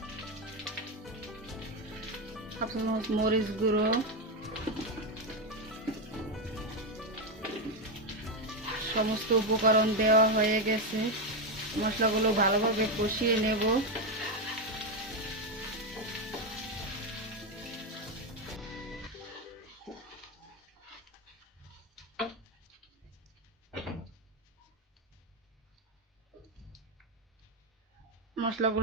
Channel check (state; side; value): normal; both; correlation 0.08